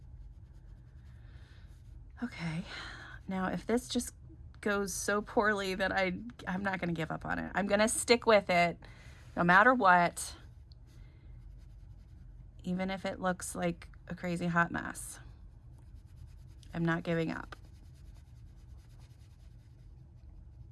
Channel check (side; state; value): both; identical; correlation 1.00